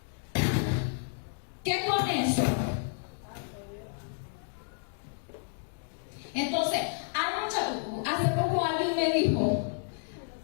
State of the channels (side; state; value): right; silent; digital silence